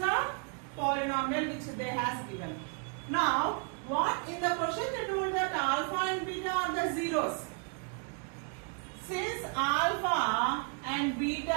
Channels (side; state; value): left; quieter; 39.1 dB